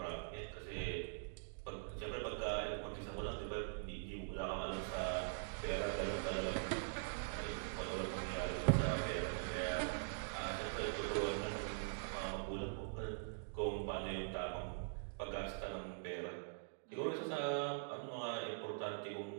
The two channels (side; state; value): left; silent; digital silence